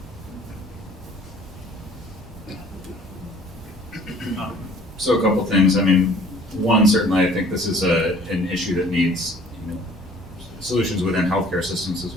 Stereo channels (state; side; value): normal; both; correlation 0.54